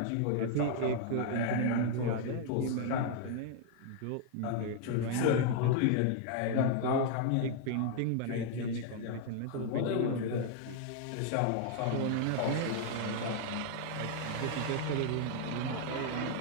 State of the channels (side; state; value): both; different; correlation 0.00